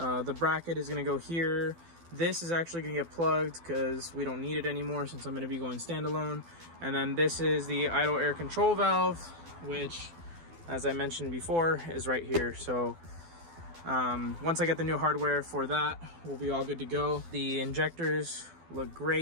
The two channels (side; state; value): left; late; 12 ms